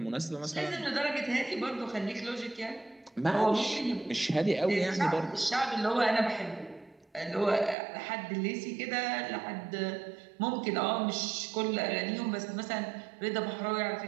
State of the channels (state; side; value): drops out; left; at 7.8 s